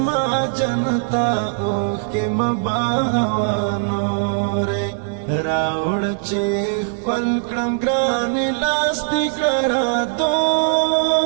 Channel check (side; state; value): left; silent; digital silence